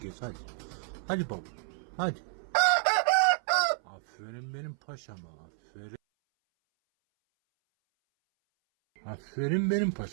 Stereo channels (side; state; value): left; silent; 57 dB below the other